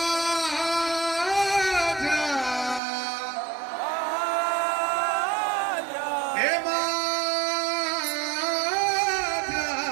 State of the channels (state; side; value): drops out; left; at 2.8 s